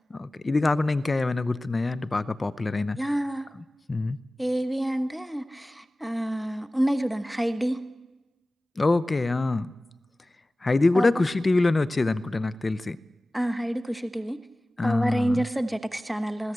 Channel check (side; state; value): both; normal; correlation 0.97